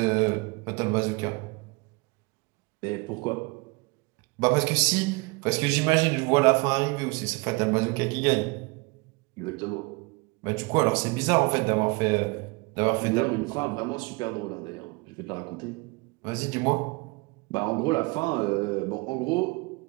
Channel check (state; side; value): quieter; left; 27.1 dB